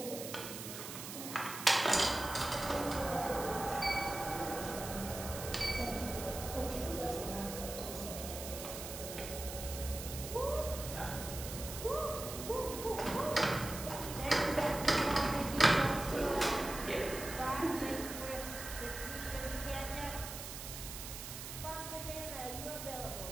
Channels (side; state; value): right; noise; hiss, 8 dB below the sound